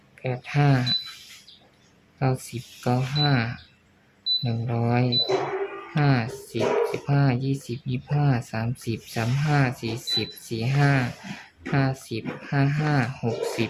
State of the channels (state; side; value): identical; both; correlation 1.00